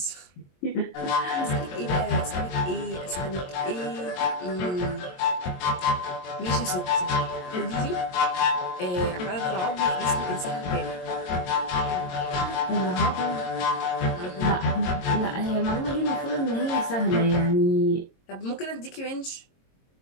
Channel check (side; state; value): right; late; 22 ms